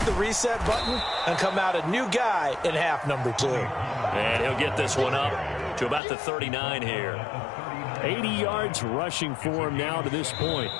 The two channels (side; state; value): right; drops out; at 6.0 s